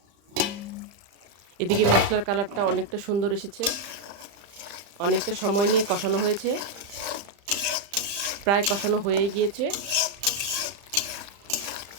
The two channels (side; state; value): left; late; 35 ms